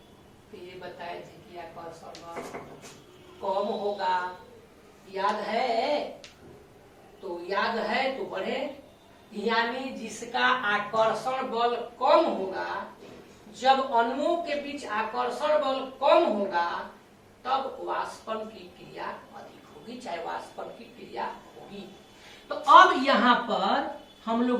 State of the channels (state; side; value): identical; both; correlation 1.00